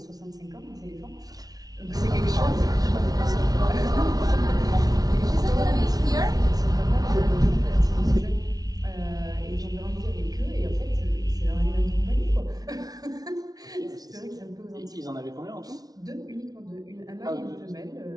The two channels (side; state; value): left; late; 0.18 ms